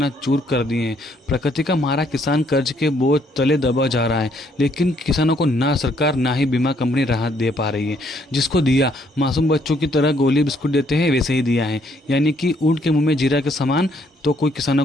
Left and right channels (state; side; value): normal; both; correlation 0.68